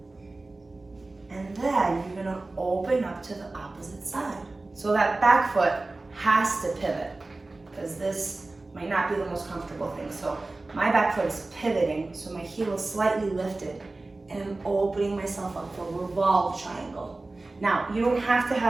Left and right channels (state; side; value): quieter; left; 3.2 dB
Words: And then you're going to open up to the opposite side. So that back foot has to pivot because this might not be the most comfortable thing. So my back foot is pivoting, so my heel is slightly lifted, and I'm opening myself up for a revolve triangle. Now, you don't have to